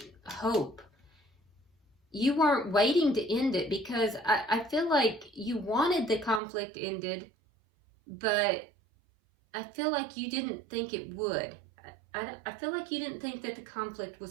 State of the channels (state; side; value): drops out; left; at 6.4 s